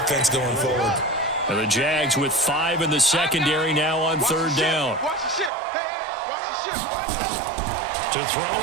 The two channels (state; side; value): drops out; left; at 5.5 s